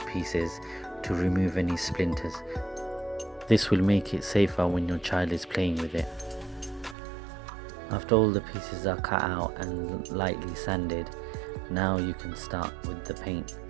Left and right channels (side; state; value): left; drops out; at 7.0 s